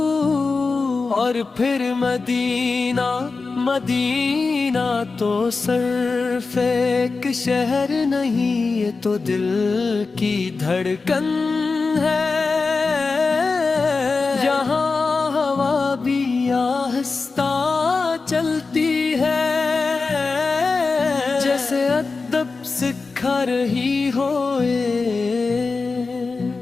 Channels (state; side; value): quieter; right; 4.2 dB